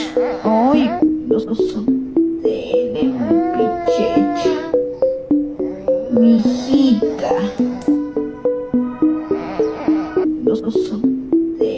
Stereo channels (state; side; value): identical; both; correlation 1.00